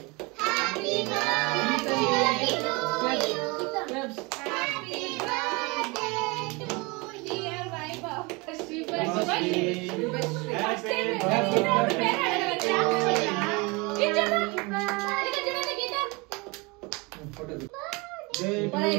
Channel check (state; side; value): quieter; left; 26.9 dB